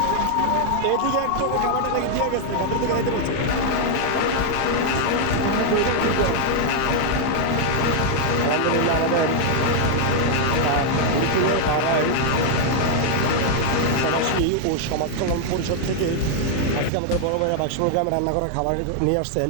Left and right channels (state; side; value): different; both; correlation 0.00